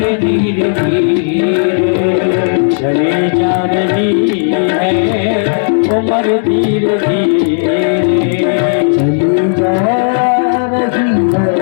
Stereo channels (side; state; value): right; silent; digital silence